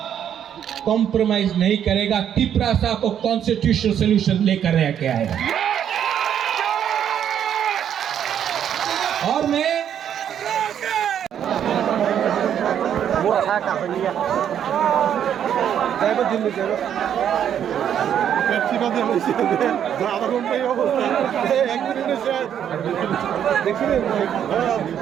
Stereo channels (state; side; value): quieter; left; 9.3 dB